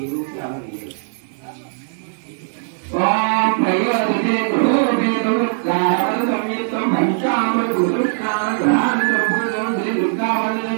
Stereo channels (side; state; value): left; silent; 66 dB below the other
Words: ఓం ప్రయోజనే గృహోపేతం గాయన సంయుక్తం పంచామృత గురుష్ణాన గ్రహాన సంపూర్ణం శ్రీ దుర్గావళి